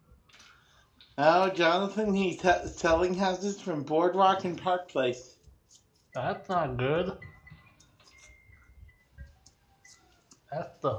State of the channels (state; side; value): identical; both; correlation 1.00